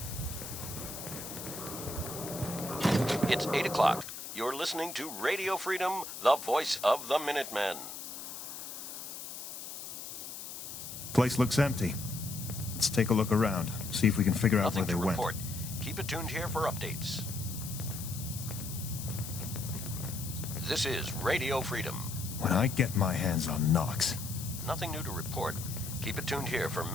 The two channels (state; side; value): noise; left; hiss, 9 dB below the sound